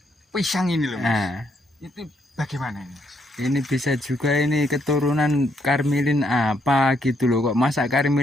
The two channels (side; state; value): both; normal; correlation 0.74